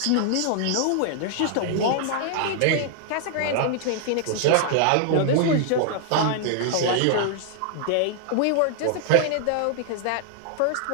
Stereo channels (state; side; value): different; both; correlation 0.00